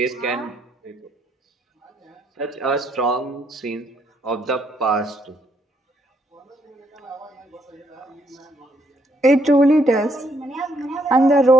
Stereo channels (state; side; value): normal; both; correlation 0.72